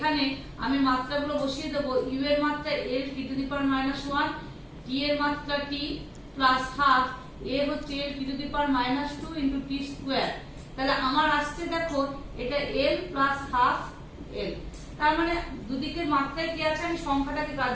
আমি মাত্রাগুলো বসিয়ে দেব, u এর মাত্রা l t to the power -1, t এর মাত্রা t + half, a হচ্ছে l t to the power -2 * t square. তাহলে আমার আসছে দেখো এটা l + half l, তার মানে দুদিকের মাত্রায় কি আছে, আমি সংখ্যাটাকে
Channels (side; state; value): both; identical; correlation 1.00